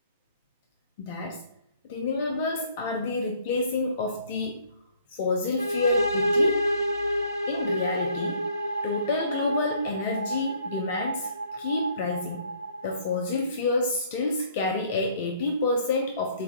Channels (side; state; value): both; inverted; correlation -0.61